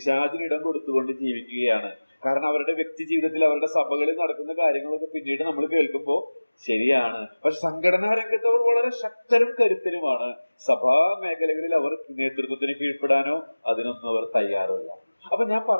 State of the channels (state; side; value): inverted; both; correlation -1.00